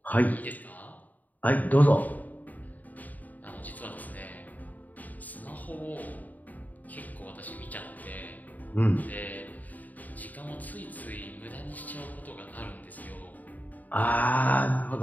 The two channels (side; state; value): right; late; 0.079 ms